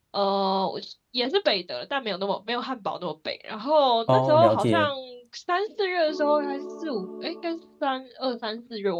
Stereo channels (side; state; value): both; identical; correlation 1.00